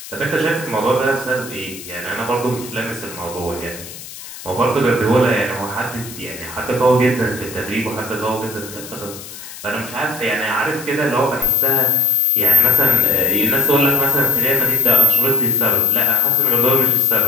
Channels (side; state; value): left; noise; hiss, 14 dB below the sound